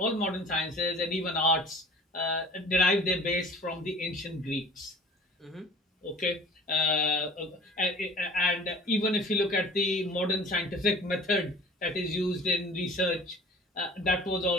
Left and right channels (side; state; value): both; normal; correlation 0.45